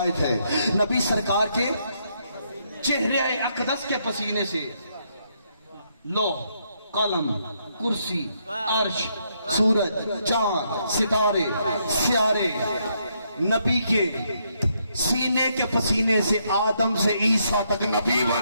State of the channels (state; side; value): inverted; both; correlation -0.75